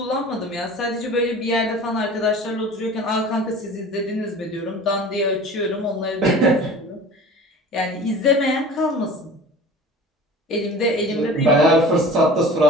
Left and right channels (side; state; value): both; normal; correlation 0.41